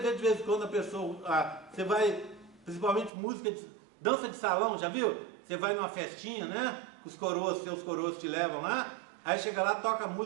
de vez em quando a pessoa, você vai, principalmente dança de salão, já viu? Você vai numa festinha, né? Os coroas, seus coroas te levam lá, aí chega lá, toca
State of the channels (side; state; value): left; drops out; at 3.1 s